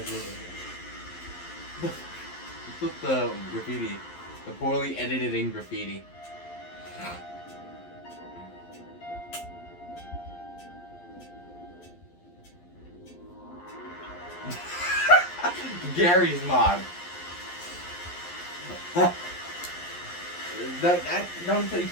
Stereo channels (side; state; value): right; late; 11 ms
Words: this? Look at the graffiti. The poorly edited in graffiti. Gary's mod. You